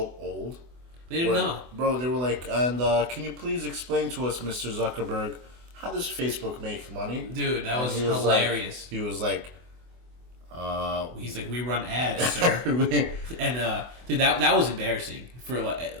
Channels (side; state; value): left; late; 24 ms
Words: old. They didn't know. Bro, they were like, and can you please explain to us, Mr. Zuckerberg, how does Facebook make money? Dude, that was hilarious. He was like, he's like, we run ads, sir. And dude, that was embarrassing for